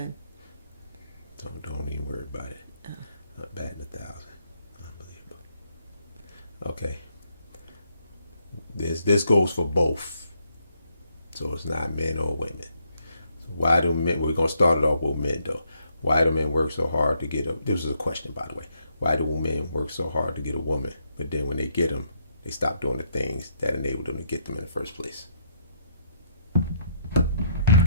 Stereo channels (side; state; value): both; inverted; correlation -0.73